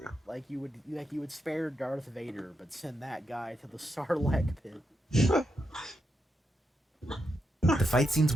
you? Like you would spare Darth Vader, but send that guy to the Sarlacc pit. the fight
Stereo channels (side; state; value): both; normal; correlation 0.83